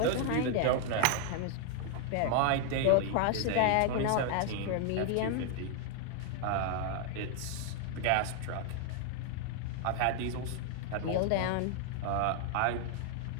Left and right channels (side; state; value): both; different; correlation 0.00